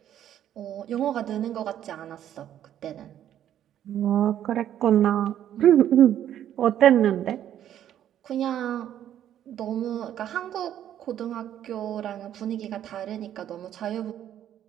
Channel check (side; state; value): left; quieter; 10.9 dB